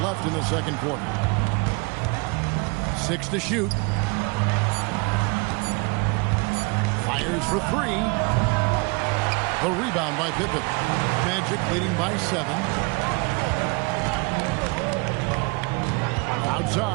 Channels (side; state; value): left; quieter; 29.0 dB